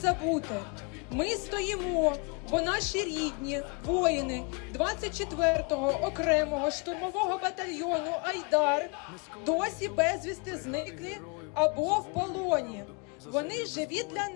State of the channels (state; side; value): quieter; right; 32.1 dB